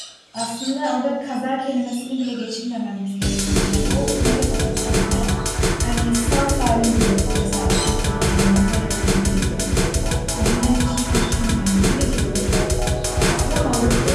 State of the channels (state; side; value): identical; both; correlation 1.00